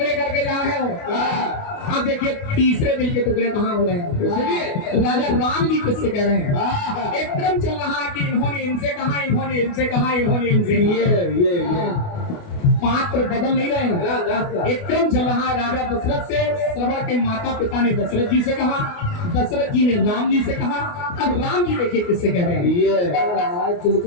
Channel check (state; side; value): late; right; 28 ms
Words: करके जा रहे हो अब देखिए तीसरे दिल के टुकड़े कहाँ हो रहे हैं सुनिए राजा राम जी किससे कह रहे हैं एक क्रम चल रहा है कि इन्होंने इनसे कहा इन्होंने इनसे कहा इन्होंने इनसे ये पात्र बदल नहीं रहे हैं एक क्रम चल रहा है राजा दशरथ से श्रवण के माता पिता ने दशरथ जी से कहा दशरथ जी ने राम जी से कहा अब राम जी देखिए किससे कह रहे हैं